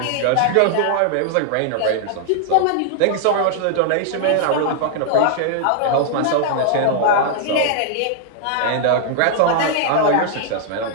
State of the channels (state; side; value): different; both; correlation -0.01